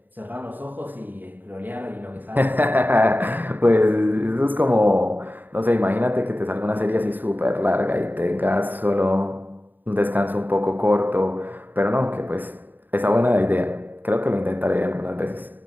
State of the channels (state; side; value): late; left; 0.089 ms